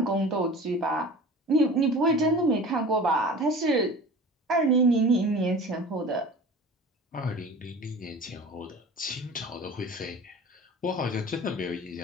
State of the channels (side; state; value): both; normal; correlation 0.39